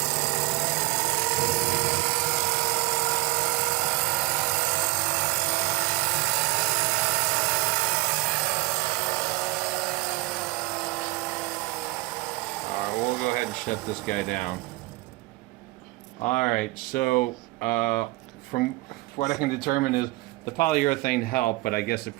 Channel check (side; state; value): left; quieter; 21.5 dB